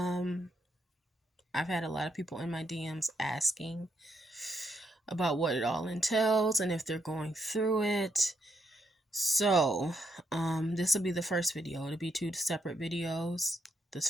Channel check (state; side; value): normal; both; correlation 0.78